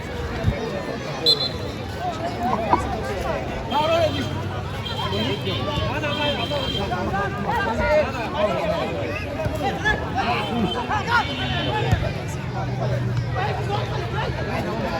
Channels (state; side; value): identical; both; correlation 1.00